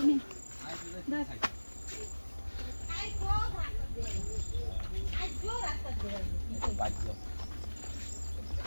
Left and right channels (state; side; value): inverted; both; correlation -1.00